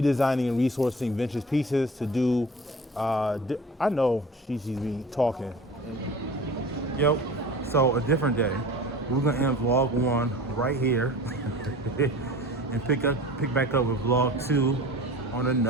and resourcing vintage pieces to do, I know she's me talking. Yep, so a different day. We're gonna end vlog 1 right here and pick back up with vlog 2 on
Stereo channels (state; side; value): normal; both; correlation 0.39